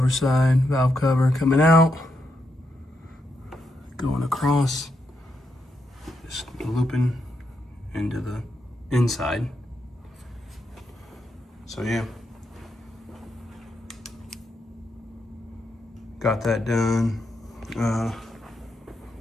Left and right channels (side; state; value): both; normal; correlation 0.82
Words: side valve cover coming out, going across, just looping into the inside. So yeah, got that done.